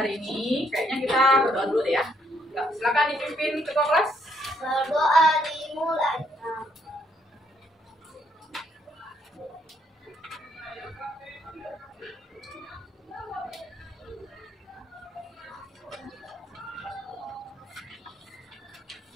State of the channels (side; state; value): both; normal; correlation 0.71